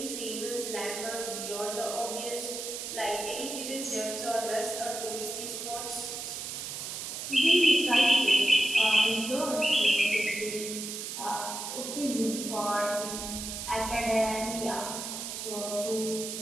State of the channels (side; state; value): right; noise; hiss, 6 dB below the sound